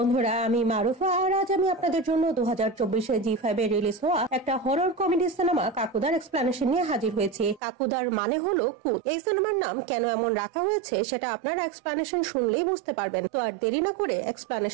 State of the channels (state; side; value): drops out; left; at 7.6 s